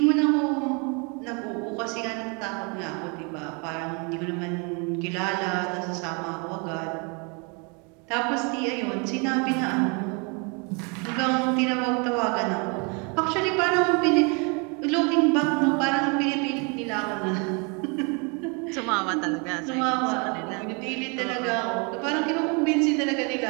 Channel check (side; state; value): left; quieter; 33.1 dB